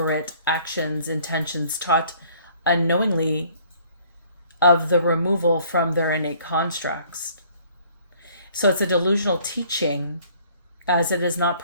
actions, intentions taught unknowingly of the removal from their innate constructs. So it's a delusional teaching, as it is not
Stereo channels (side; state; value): both; inverted; correlation -0.57